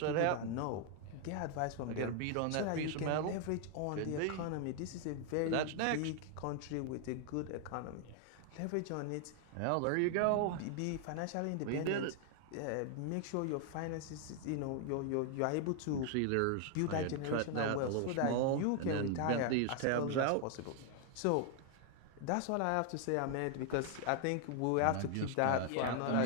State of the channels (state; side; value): different; both; correlation 0.00